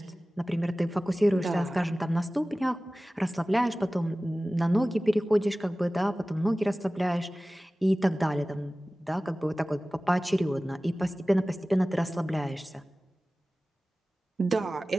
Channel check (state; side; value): normal; both; correlation 0.97